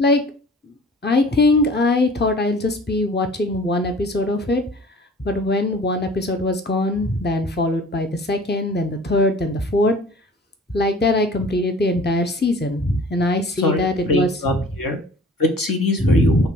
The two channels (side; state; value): both; normal; correlation 0.47